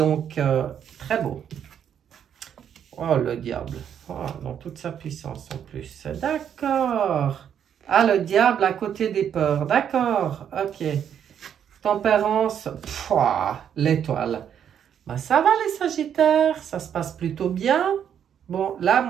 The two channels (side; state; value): left; quieter; 8.8 dB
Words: très beau. Oh, le diable. Oh, dans toute sa puissance en plus. D'accord. Ah, le diable à côté des peurs. D'accord. Ok. Tempérance. L'étoile. Ben, ça va les Sagittaires. Ça se passe plutôt bien. Bon, là,